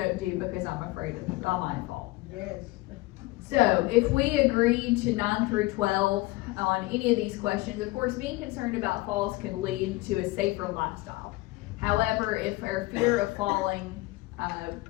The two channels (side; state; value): right; quieter; 20.7 dB